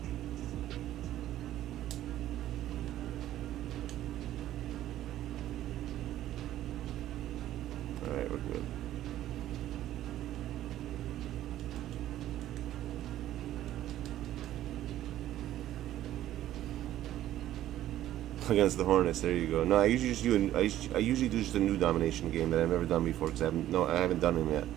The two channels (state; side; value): quieter; left; 13.1 dB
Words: Alright, we're good. Against the Hornets, there you go. No, I usually just do I usually do just a new domination game that I've never done before because I haven't done them yet.